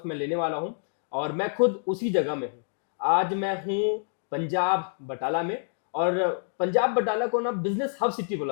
मैं लेने वाला हूँ और मैं खुद उसी जगह में हूँ। आज मैं हूँ पंजाब बटाला में, और पंजाब बटाला को ना बिजनेस हब सिटी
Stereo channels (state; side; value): silent; right; digital silence